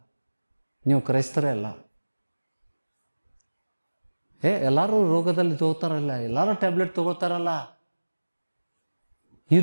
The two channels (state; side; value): inverted; both; correlation -1.00